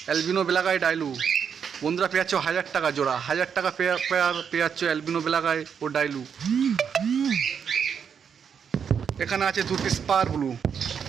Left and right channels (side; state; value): left; quieter; 7.2 dB